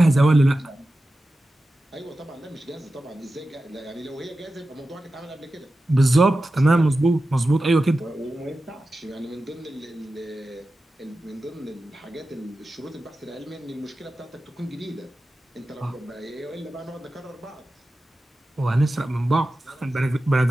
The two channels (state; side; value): normal; both; correlation 0.93